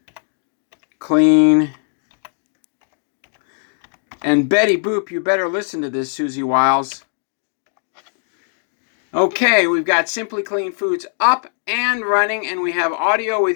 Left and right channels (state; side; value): silent; right; digital silence